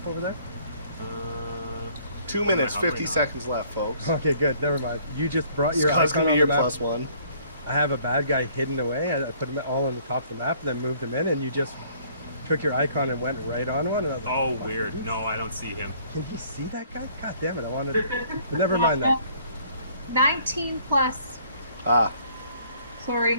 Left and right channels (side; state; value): both; inverted; correlation -0.60